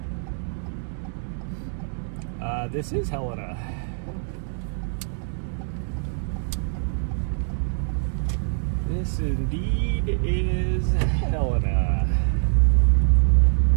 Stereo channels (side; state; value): left; silent; 62 dB below the other